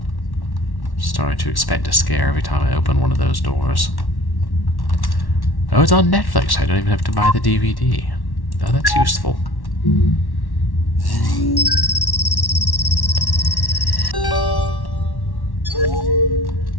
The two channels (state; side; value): late; right; 1.1 ms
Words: Sorry to expect a scare every time I open one of those doors. Oh, it's on Netflix. I don't even have to buy the DVD. Oh, that's useful.